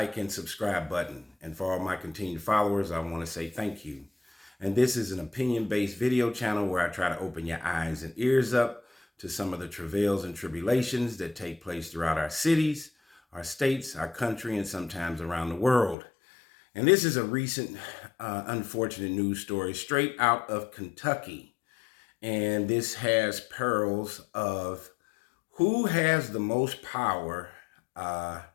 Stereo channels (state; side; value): drops out; right; at 16.0 s